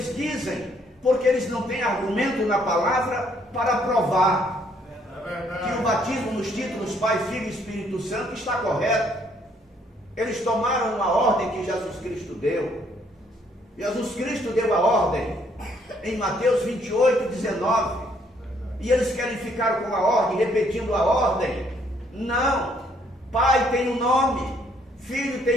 dizem, porque eles não têm argumento na palavra para provar que o batismo nos títulos Pai, Filho e Espírito Santo está correto. Eles tomaram uma ordem que Jesus Cristo deu. Jesus Cristo deu a ordem em Mateus 28, 19. E eles querem ficar com a ordem, repetindo a ordem. Não. Pai tem um nome, Filho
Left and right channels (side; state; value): both; normal; correlation 0.67